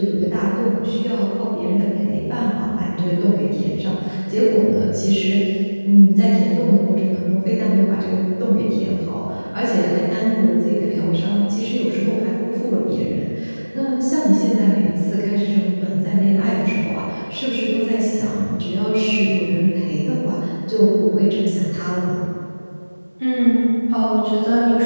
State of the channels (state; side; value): inverted; both; correlation -1.00